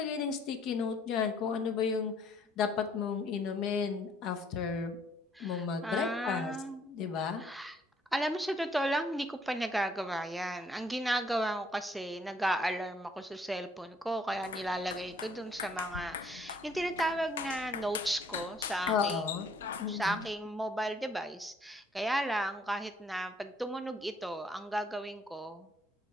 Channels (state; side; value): normal; both; correlation 0.64